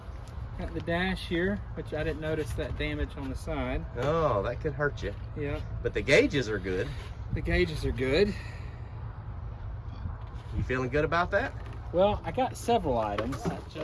got the dash here, which I didn't notice that damage on the side. Oh, that could hurt you. Yeah. But the gauges are good. The gauges are good. You feeling good about that? Well, I got several items. It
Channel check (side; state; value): both; identical; correlation 1.00